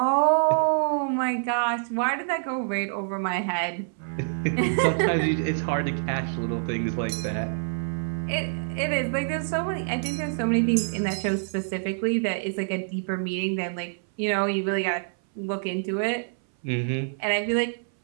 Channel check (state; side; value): silent; left; 58 dB below the other